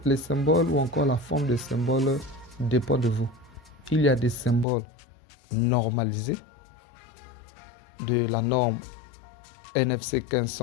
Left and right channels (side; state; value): right; drops out; at 4.7 s